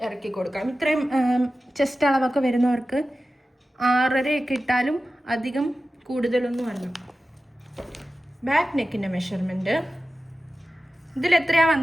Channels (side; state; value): both; normal; correlation 0.94